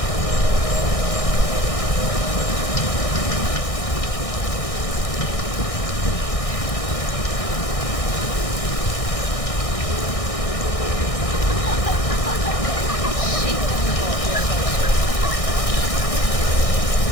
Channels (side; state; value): right; late; 1.6 ms